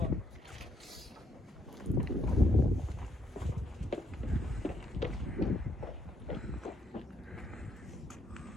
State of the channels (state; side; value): normal; both; correlation 0.73